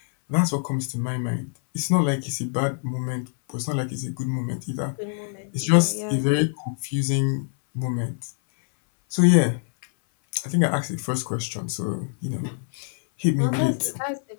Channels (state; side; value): silent; right; 59 dB below the other